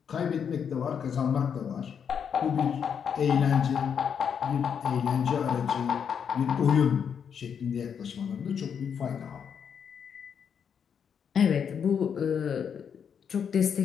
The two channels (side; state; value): right; quieter; 7.4 dB